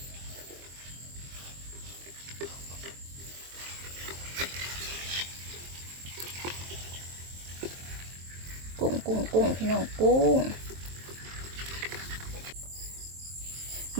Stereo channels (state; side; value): late; left; 23 ms